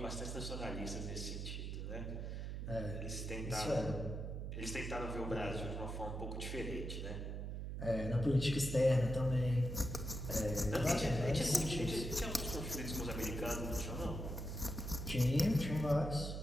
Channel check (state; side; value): noise; right; hum, 5 dB below the sound